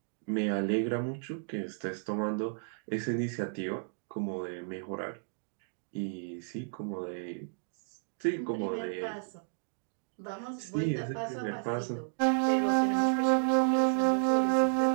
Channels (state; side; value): silent; left; digital silence